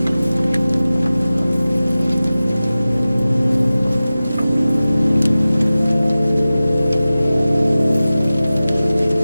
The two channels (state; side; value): inverted; both; correlation -0.96